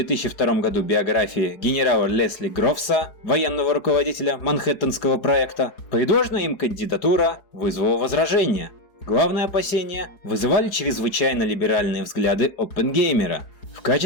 году биографии генерала Лесли Грофса, военного руководителя Манхэттенского проекта, предложенная им кандидатура вызвала возражения. Главные опасения вызывали чрезвычайно либеральные взгляды Оппенгеймера. В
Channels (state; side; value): late; right; 4.9 ms